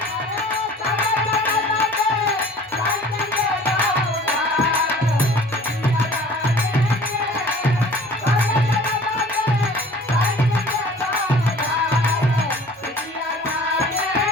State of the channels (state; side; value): normal; both; correlation 0.47